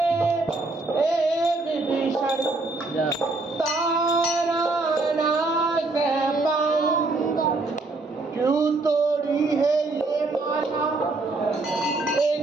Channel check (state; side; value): quieter; left; 3.3 dB